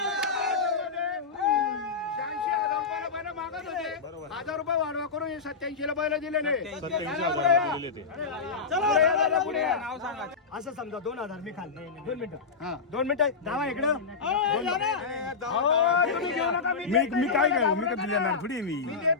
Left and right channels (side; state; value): right; quieter; 5.0 dB